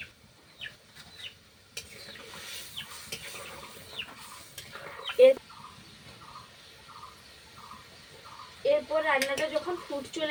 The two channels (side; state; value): both; identical; correlation 1.00